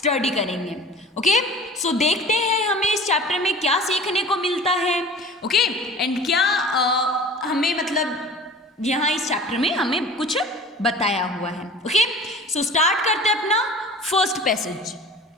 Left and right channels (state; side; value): normal; both; correlation 0.41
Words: करेंगे. ओके, सो देखते हैं हमें इस चैप्टर में क्या सीखने को मिलता है. ओके, एंड क्या हमें मतलब यहाँ इस चैप्टर में हमें कुछ बताया हुआ है. ओके, सो स्टार्ट करते हैं अपना first passage.